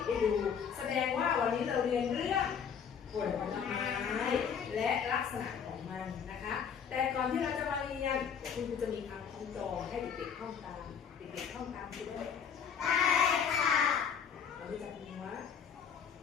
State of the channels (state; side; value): quieter; right; 7.3 dB